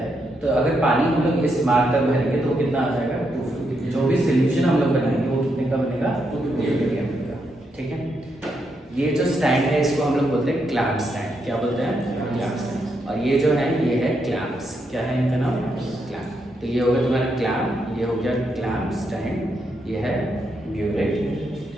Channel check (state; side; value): normal; both; correlation 0.80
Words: तो अगर पानी हम लोग इस मार्क तक भरेंगे तो कितना आ जाएगा, 250। जो भी सोल्यूशन हम लोग बनाएंगे वो कितने का बनेगा, 250 ml का, ठीक है। ये जो स्टैंड है इसको हम लोग बोलते हैं क्लैंप स्टैंड। क्या बोलते हैं, क्लैंप स्टैंड। और ये जो है ये है क्लैंप्स। क्या है इनका नाम, क्लैंप। तो ये हो गया तुम्हारा क्लैंप, ये हो गया क्लैंप स्टैंड, ये है ब्यूरेट।